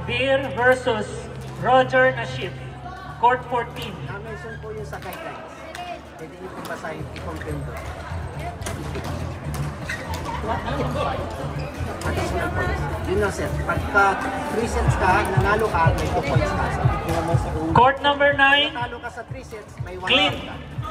Vir versus Roger Naship. Court 14. Mention po yun sa guidelines. Pwede nyo po basahin, i-confirm doon. Additional points. Yun na, sir. Pagka 3 sets ka, nanalo ka, may 2 points ka. Court number 9, Nanalo ka sa 3 sets, may 1 Clint point ka.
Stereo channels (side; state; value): both; identical; correlation 1.00